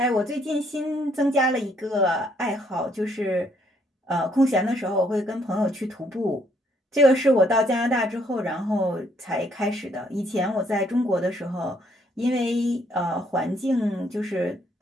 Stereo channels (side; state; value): both; normal; correlation 0.68